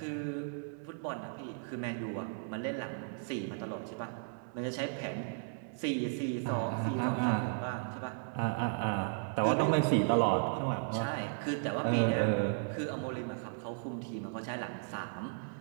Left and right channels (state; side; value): silent; left; 54 dB below the other